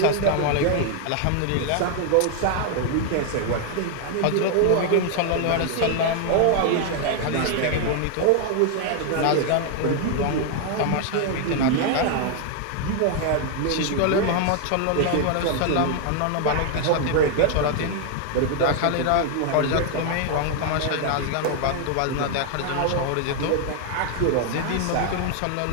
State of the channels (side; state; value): both; different; correlation 0.00